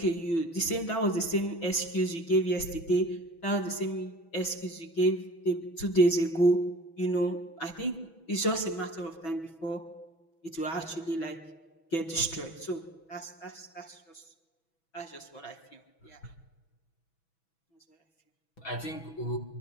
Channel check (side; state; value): right; late; 6.1 ms